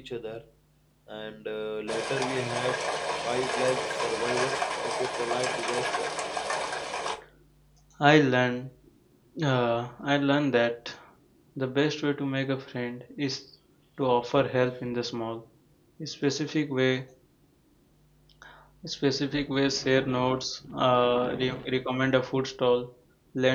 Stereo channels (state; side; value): identical; both; correlation 1.00